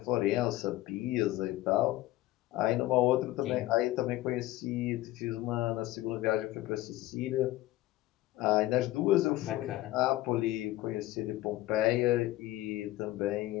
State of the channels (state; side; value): quieter; right; 16.3 dB